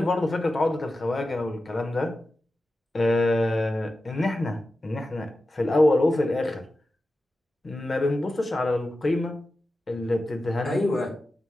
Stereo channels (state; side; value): normal; both; correlation 0.93